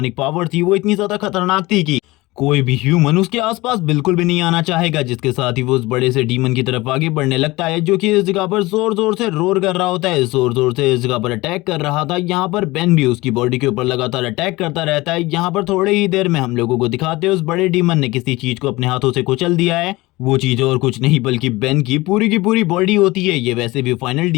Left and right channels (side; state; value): right; quieter; 20.7 dB